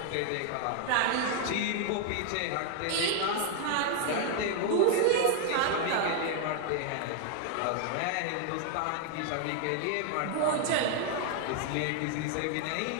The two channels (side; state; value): both; different; correlation 0.00